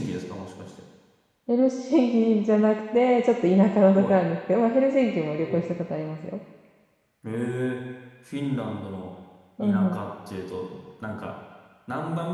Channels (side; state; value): both; identical; correlation 1.00